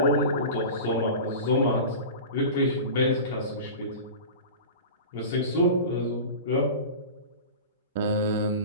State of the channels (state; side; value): inverted; both; correlation -0.32